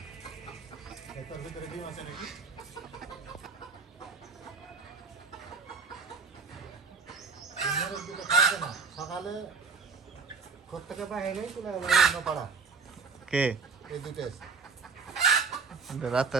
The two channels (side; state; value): left; quieter; 4.7 dB